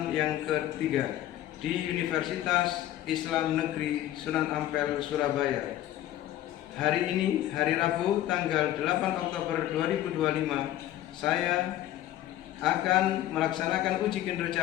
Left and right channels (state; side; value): quieter; right; 13.3 dB